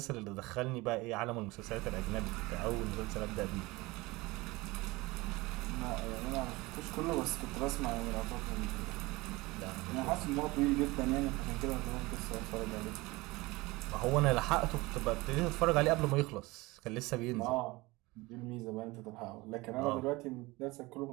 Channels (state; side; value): quieter; left; 22.1 dB